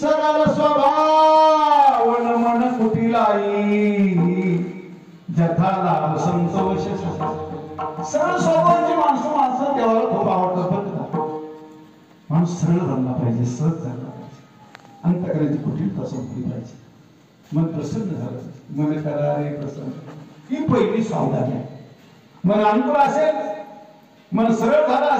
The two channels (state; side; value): identical; both; correlation 1.00